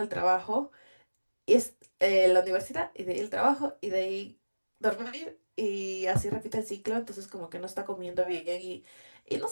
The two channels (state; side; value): inverted; both; correlation -1.00